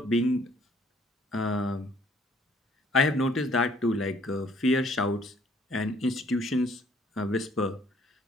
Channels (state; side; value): normal; both; correlation 0.61